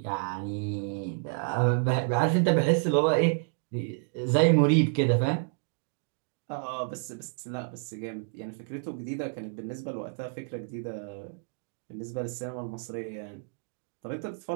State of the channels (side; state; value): left; silent; digital silence